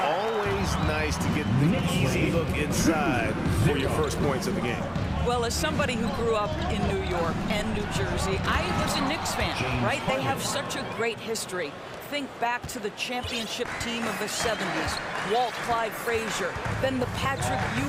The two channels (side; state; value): both; identical; correlation 1.00